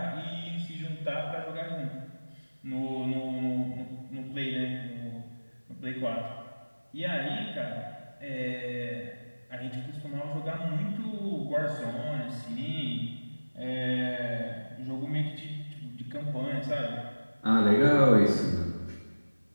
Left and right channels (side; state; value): both; inverted; correlation -1.00